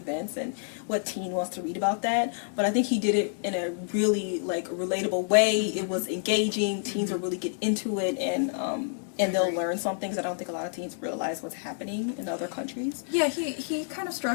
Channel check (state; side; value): silent; right; digital silence